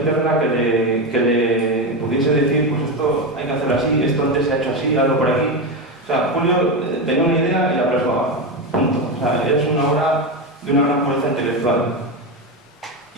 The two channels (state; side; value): normal; both; correlation 0.15